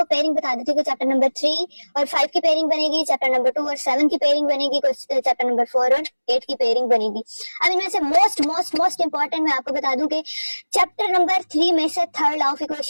पेयरिंग बता देती हूँ कि चैप्टर नंबर 3 और 5 की पेयरिंग बनेगी, चैप्टर नंबर 2 और 7 की पेयरिंग बनेगी, चैप्टर नंबर 4 और 8 की पेयरिंग बनेगी। अब इनमें से मोस्ट इंपॉर्टेंट मैं आपको बता दूं कि चैप्टर नंबर 3 में से थर्ड लॉ ऑफ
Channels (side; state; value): both; inverted; correlation -1.00